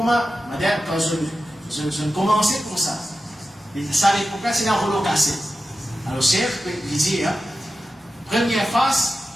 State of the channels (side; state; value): both; normal; correlation 0.92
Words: madame, quand je commençais comme ça, ça l'époque, c'est dans le cassé. Alors, chef, il dit, première phase,